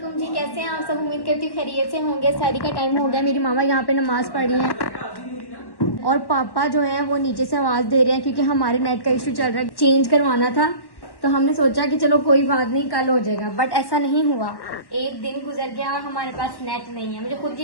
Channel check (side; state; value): right; late; 1.1 ms